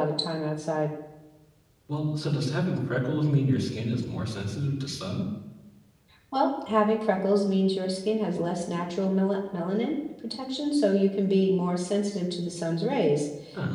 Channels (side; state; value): both; identical; correlation 1.00